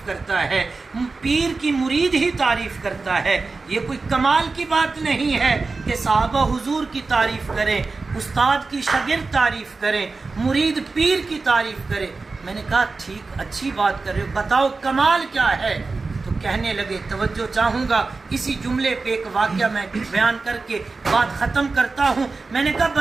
کرتا ہے، پیر کی مرید ہی تعریف کرتا ہے، یہ کوئی کمال کی بات نہیں ہے کہ صحابہ حضور کی تعریف کریں، استاد کی شاگرد تعریف کریں، مرید پیر کی تعریف کرے۔ میں نے کہا ٹھیک اچھی بات کر رہے ہو، بتاؤ کمال کیا ہے؟ تو کہنے لگے، توجہ چاہوں گا اسی جملے پہ ایک واقعہ میں بیان کر کے بات ختم کرتا ہوں۔ میں نے کہا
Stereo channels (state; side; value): quieter; left; 3.9 dB